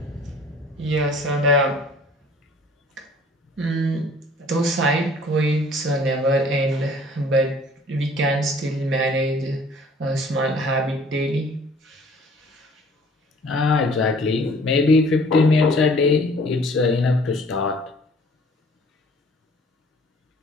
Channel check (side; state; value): both; normal; correlation 0.53